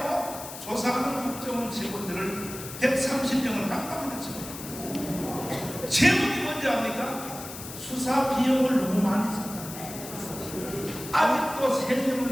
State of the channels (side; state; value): left; noise; hiss, 11 dB below the sound